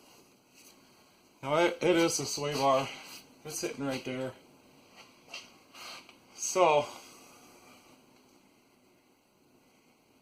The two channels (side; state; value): both; identical; correlation 1.00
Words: Now it is the sway bar. It's sitting right there. So